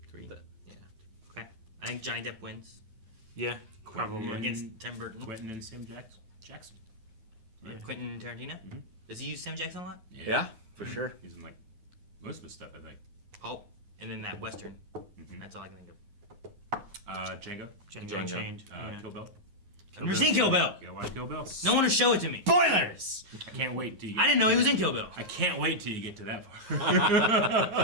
3. Yeah. Okay. I think Johnny Depp wins Yeah, probably. against Tim Burton. Quentin and Sam Jackson. Quentin Tarantino? Does he use Sam Jackson a lot? Yeah, for sure. He's in like most of his stuff, I think. Pulp. And then that Western. That's all I can think of. Django. Django Unchained. Yeah. Kill Bill. I've never seen Kill Bill. You gotta watch Kill Bill. No one will show it to me. Spoilers! I can't wait till you I get didn't know he was in Kill Bill. I can't wait till you get to that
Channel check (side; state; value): left; late; 9.6 ms